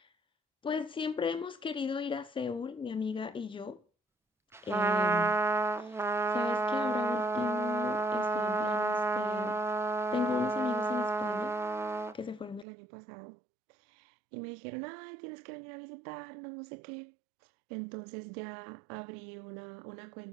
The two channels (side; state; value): left; drops out; at 12.7 s